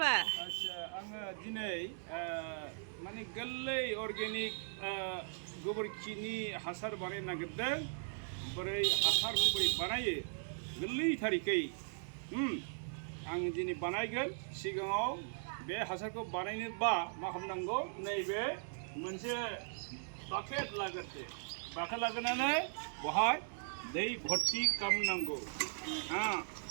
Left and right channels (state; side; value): silent; left; digital silence